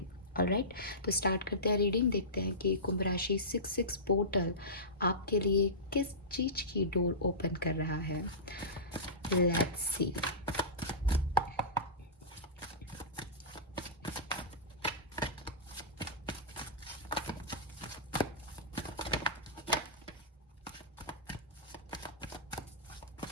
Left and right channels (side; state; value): both; normal; correlation -0.19